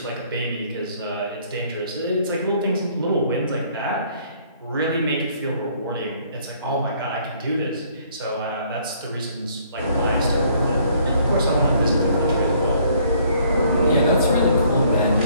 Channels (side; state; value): both; inverted; correlation -0.62